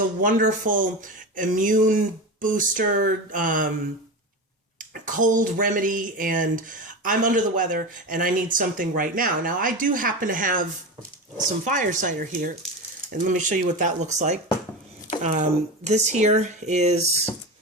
wonderful immune booster, cold remedy, and I'm under the weather and I need something right now. Now, I do happen to have some fire cider here, and let me show you what that looks like. This here is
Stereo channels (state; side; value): normal; both; correlation 0.24